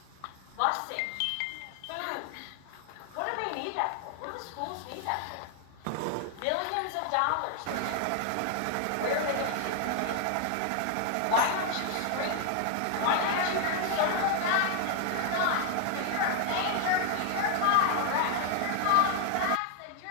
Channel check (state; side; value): different; both; correlation 0.00